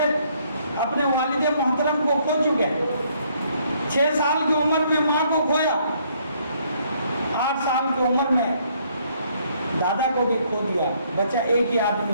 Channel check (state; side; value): inverted; both; correlation -0.67